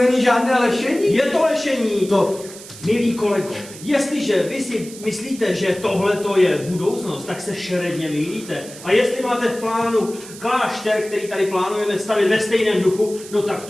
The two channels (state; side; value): noise; right; hiss, 16 dB below the sound